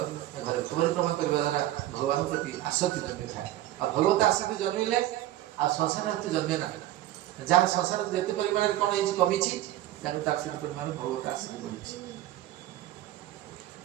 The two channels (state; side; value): quieter; left; 14.5 dB